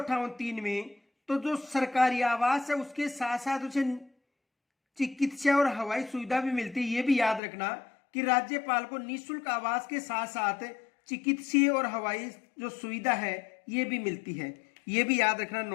में, तो जो सरकारी आवास है उसके साथ साथ उसे चिकित्सा और हवाई सुविधा भी मिलती है। ये भी याद रखना कि राज्यपाल को निःशुल्क आवास के साथ साथ चिकित्सीय और हवाई जो सुविधा है ये भी मिलती है। ये भी याद रखना,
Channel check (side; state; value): right; drops out; at 7.4 s